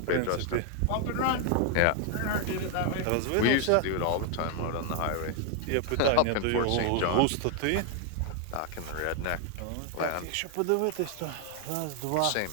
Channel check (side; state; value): both; different; correlation 0.00